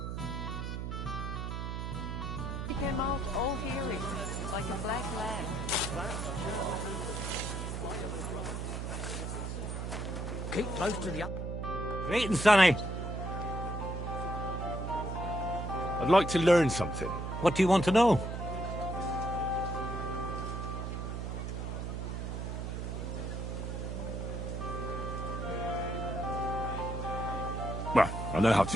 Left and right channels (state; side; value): noise; right; hum, 4 dB below the sound